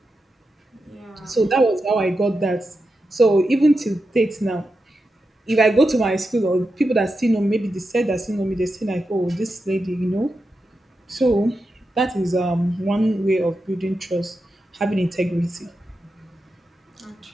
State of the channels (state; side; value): normal; both; correlation 0.89